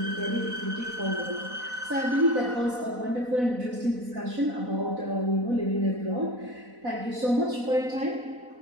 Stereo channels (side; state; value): left; late; 4.0 ms